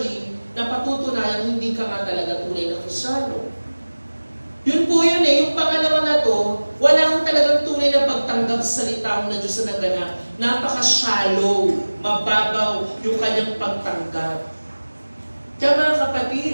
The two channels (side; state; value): both; inverted; correlation -1.00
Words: napatutunayan hindi ka nga talaga tunay na Kristiyano. Yun po yun eh, yung pangalawa na to, wala kang talagang tunay na pagtanggap sa salita mo na Diyos na naganap. Napaka-shallow, mababaw yung kanyang pagtanggap. Kaya mga